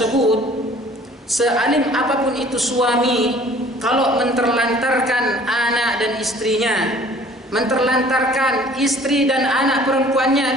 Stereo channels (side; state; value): both; normal; correlation 0.52